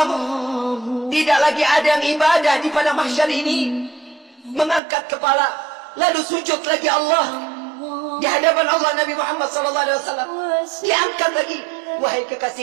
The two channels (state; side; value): drops out; left; at 4.8 s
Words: Tidak lagi ada yang ibadah di pada mahsyar ini. Mengangkat kepala, lalu sujud lagi Allah di hadapan Allah. Nabi Muhammad SAW diangkat lagi. Wahai